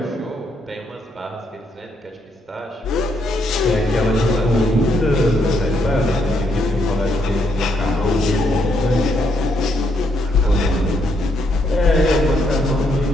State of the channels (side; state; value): both; normal; correlation 0.75